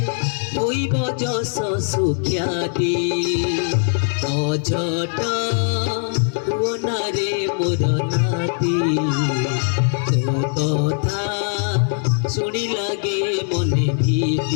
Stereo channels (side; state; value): right; silent; 59 dB below the other